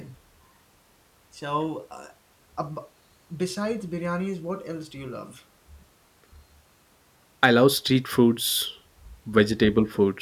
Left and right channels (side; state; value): both; identical; correlation 1.00